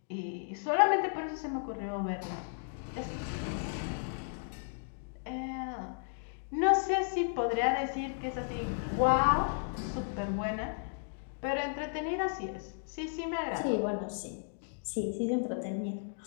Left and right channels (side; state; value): right; silent; digital silence